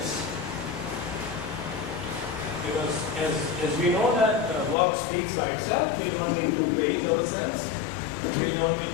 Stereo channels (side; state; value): right; drops out; at 4.8 s